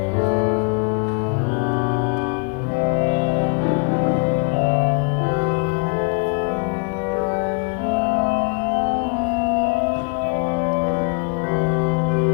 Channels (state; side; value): quieter; right; 36.1 dB